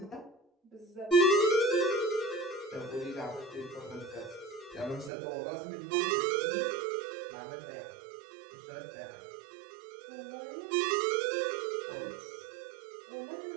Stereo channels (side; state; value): left; drops out; at 5.1 s